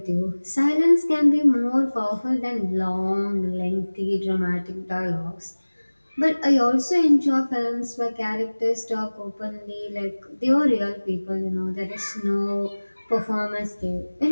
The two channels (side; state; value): both; inverted; correlation -1.00